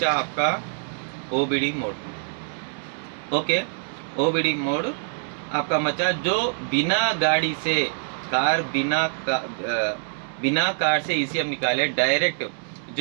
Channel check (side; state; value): left; silent; digital silence